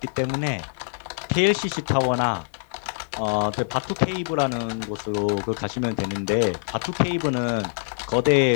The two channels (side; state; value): right; silent; digital silence